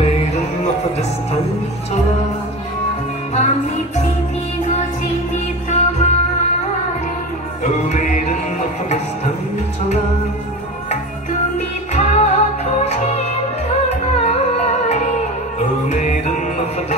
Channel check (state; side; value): normal; both; correlation 0.29